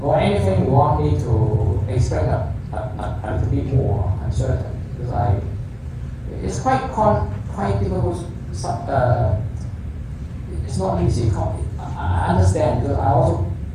Or anything you want me to explain a little bit more uncertain, because it's quite difficult. It's not easy. I understand, because I also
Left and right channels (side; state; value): both; identical; correlation 1.00